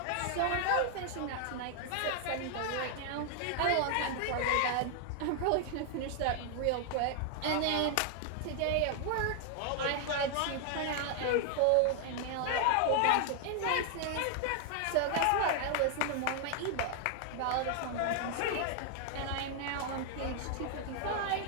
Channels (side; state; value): both; different; correlation 0.00